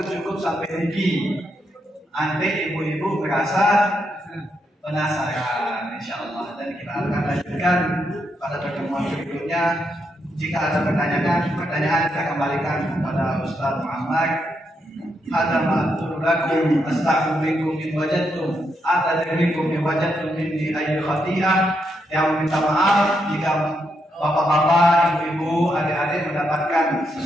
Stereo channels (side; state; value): both; normal; correlation 0.80